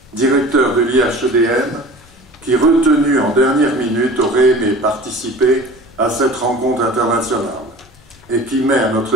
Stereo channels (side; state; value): left; noise; rumble, 28 dB below the sound